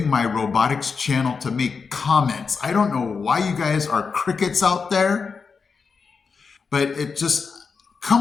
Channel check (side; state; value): right; quieter; 5.3 dB